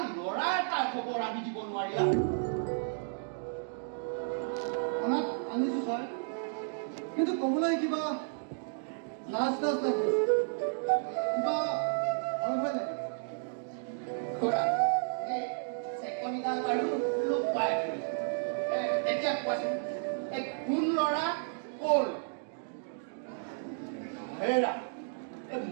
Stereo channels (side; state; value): left; silent; digital silence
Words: ল'ৰা এটাৰ খবৰ আনি দিব নোৱাৰিলা আনিছো ছাৰ কিন্তু ক'বলৈ কিবা লাজ লাগে কিবা ভয় ভয় লাগে চেকনিডাল বাৰু লোক পাই এতিয়া কোৱাচোন এই কোন ল'ৰা ক'ৰ হেৰা